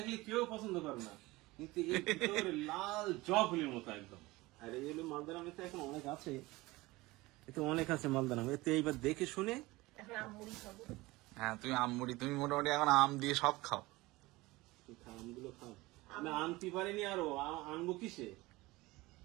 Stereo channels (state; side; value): quieter; left; 20.6 dB